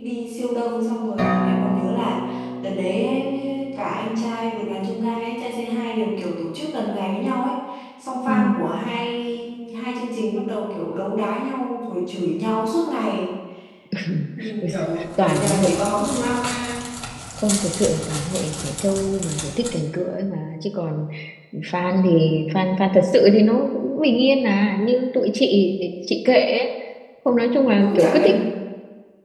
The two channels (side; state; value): both; identical; correlation 1.00